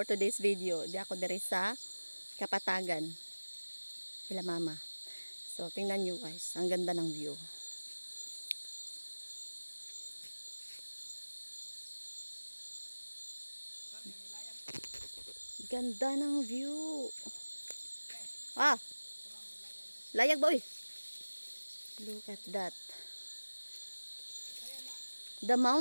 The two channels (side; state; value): both; inverted; correlation -1.00